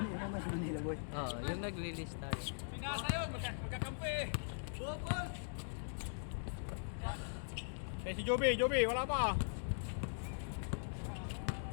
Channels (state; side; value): silent; right; digital silence